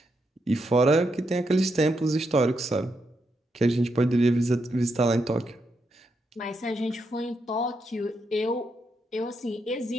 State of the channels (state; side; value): normal; both; correlation 0.82